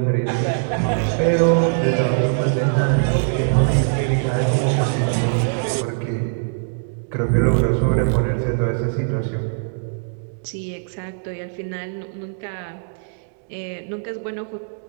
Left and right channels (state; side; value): silent; left; digital silence